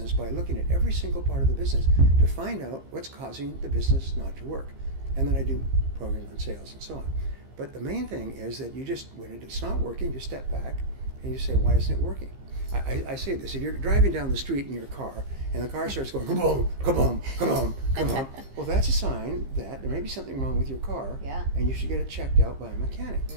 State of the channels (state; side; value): late; left; 15 ms